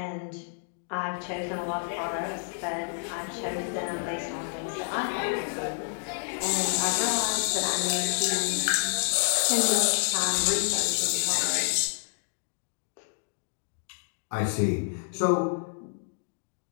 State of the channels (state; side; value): silent; right; 59 dB below the other